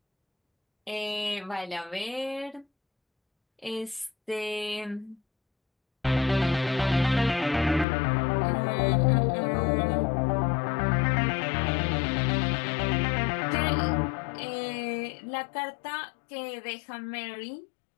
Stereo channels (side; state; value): right; drops out; at 7.9 s